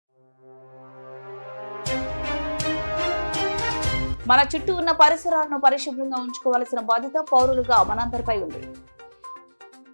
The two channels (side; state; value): both; inverted; correlation -1.00